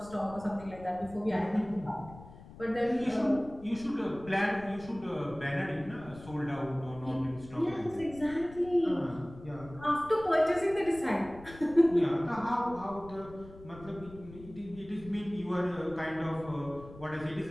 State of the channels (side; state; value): left; noise; rumble, 18 dB below the sound